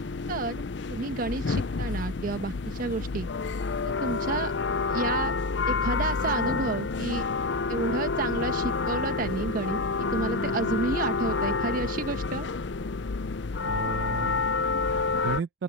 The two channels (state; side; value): normal; both; correlation 0.14